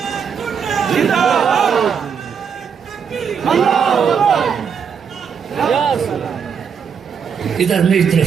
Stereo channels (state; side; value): quieter; left; 6.9 dB